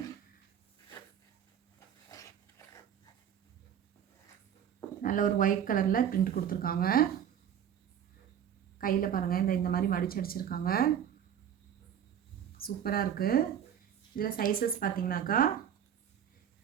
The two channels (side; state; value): left; quieter; 9.2 dB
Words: நல்ல ஒரு ஒயிட் கலரில் பிரிண்ட் கொடுத்துருக்காங்க. கையில் பாருங்கள், இந்த மாதிரி மடிச்சு அடிச்சிருக்காங்க. சூப்பராக இருக்குது. இதில் சைஸஸ் பார்த்தீங்கன்னாக்கா